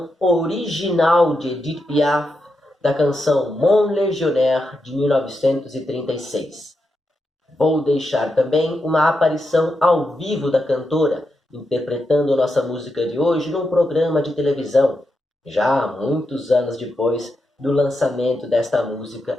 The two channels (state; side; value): normal; both; correlation 0.86